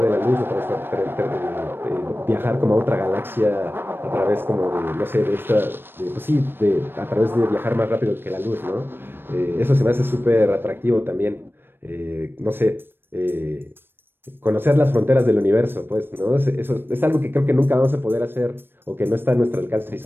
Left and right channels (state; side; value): late; left; 0.099 ms